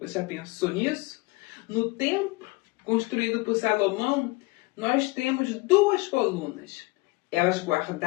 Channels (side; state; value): right; quieter; 24.6 dB